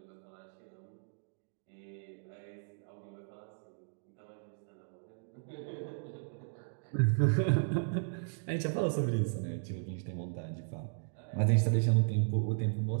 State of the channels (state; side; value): silent; left; digital silence